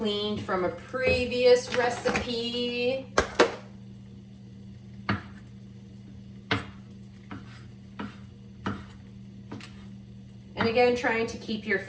from a previous recipe. And again, trying to keep your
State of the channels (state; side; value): identical; both; correlation 1.00